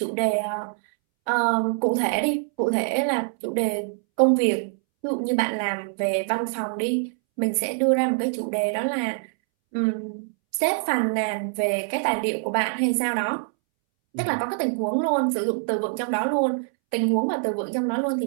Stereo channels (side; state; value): left; silent; 62 dB below the other